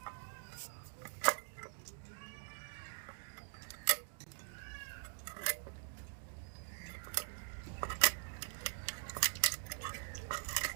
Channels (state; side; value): silent; left; digital silence